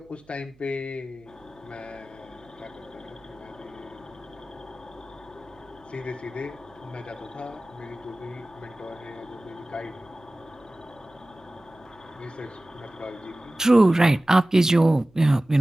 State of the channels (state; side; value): noise; right; hum, 29 dB below the sound